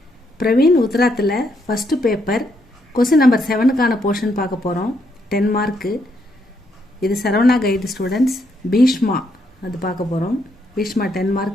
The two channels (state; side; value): normal; both; correlation 0.76